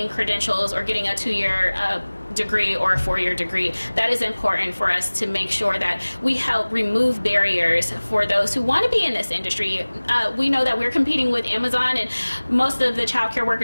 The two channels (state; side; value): inverted; both; correlation -1.00